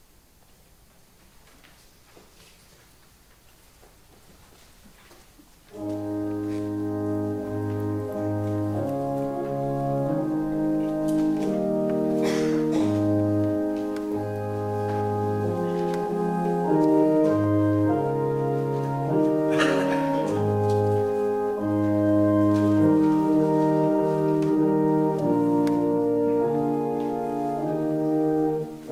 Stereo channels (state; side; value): identical; both; correlation 1.00